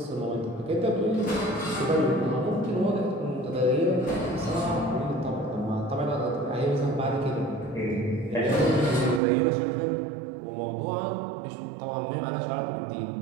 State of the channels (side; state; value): left; drops out; at 9.2 s